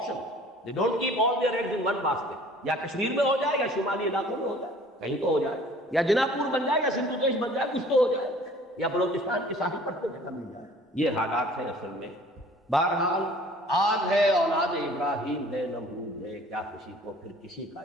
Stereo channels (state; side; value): normal; both; correlation 0.51